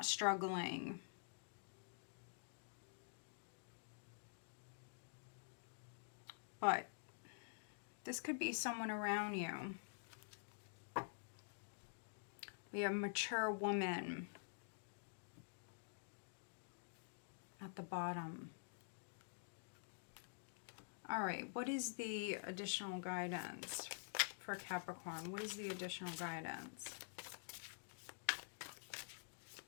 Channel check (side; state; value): right; silent; digital silence